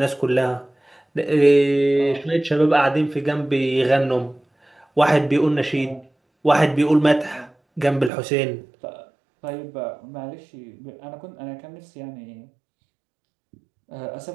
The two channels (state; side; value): drops out; left; at 8.1 s